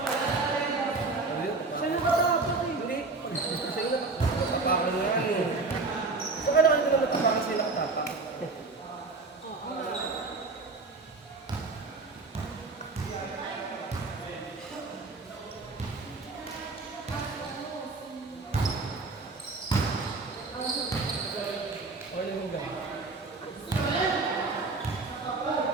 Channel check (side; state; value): left; quieter; 3.8 dB